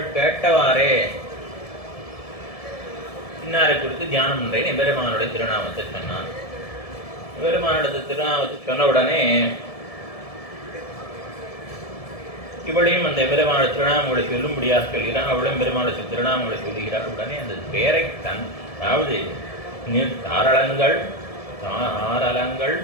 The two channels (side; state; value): right; late; 1.7 ms